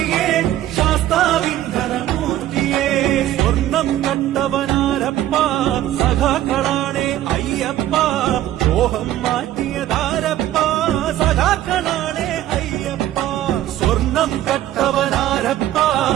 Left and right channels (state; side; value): quieter; left; 13.3 dB